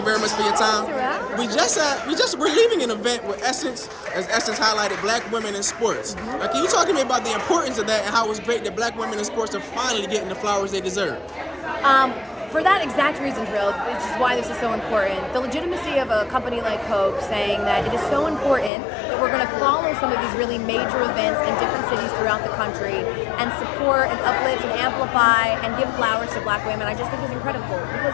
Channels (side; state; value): right; drops out; at 18.7 s